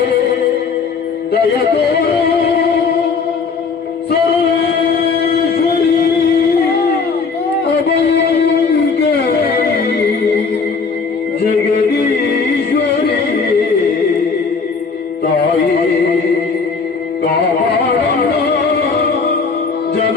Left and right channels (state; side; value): quieter; right; 5.0 dB